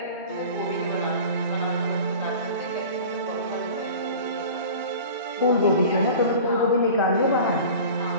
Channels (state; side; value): inverted; both; correlation -0.39